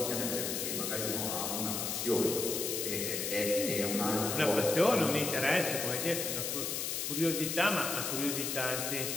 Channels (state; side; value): noise; left; hiss, 2 dB below the sound